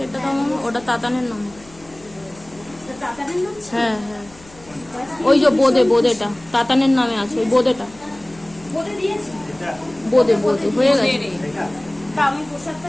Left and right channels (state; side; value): noise; left; hum, 23 dB below the sound